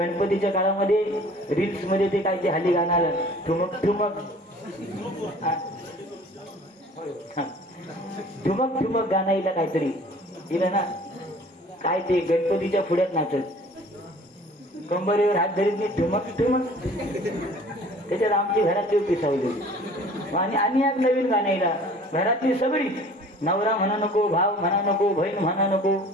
काळामध्ये रील्स मध्ये ते काय ते हल्ली गाणं आलं, ठुमक ठुमक ठुमक ठुमक गाणं येईल काहीतरी येईल ना. काय ते गणपतीच्या पुढ्यात नाचत, कंबरेवर हात धरीत नाही, ठुमक ठुमक. त्याच्यात आमची घरातली पिसावली. आणि एक नवीन गाणं येईल, घरातली सगळी, नवरा म्हणा नको, भाव म्हणा नको, बहीण म्हणा नको,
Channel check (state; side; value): normal; both; correlation 0.49